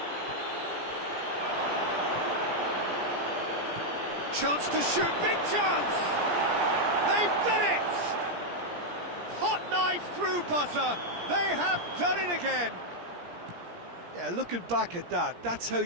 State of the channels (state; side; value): late; left; 17 ms